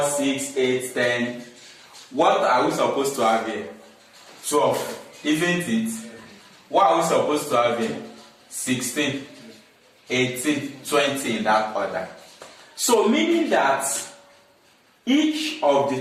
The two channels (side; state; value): both; identical; correlation 1.00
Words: 6, 8, 10. What are we supposed to have here? 12. Isn't it? What are we supposed to have here? 16, 18, 20 in that order. So meaning that each of